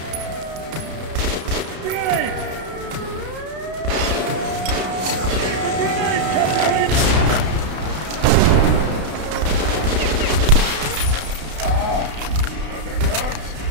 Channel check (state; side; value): late; left; 32 ms